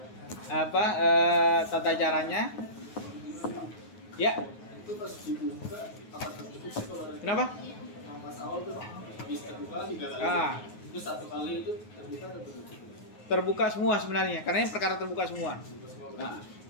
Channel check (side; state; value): right; late; 9.4 ms